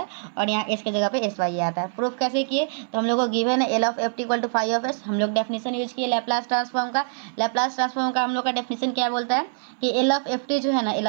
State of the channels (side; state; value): left; silent; 59 dB below the other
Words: और यहाँ एस के जगह पे एस वाई आता है। प्रूफ कैसे किए, तो हम लोग को गिवन है L of F T equal to 5s, हम लोग डेफिनेशन यूज किए लैप्लास ट्रांसफॉर्म का। लैप्लास ट्रांसफॉर्म का हम लोग का डेफिनेशन क्या बोलता है कि एल ऑफ एफ टी जो है ना, एल